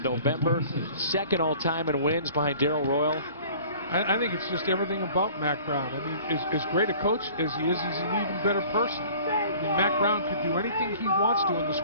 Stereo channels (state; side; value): inverted; both; correlation -0.48